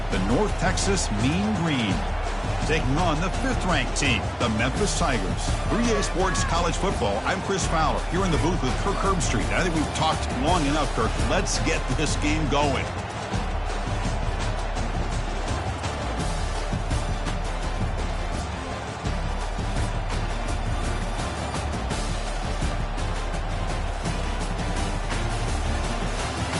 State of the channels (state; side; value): identical; both; correlation 1.00